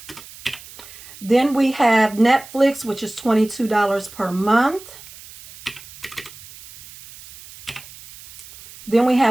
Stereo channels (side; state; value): right; noise; hiss, 19 dB below the sound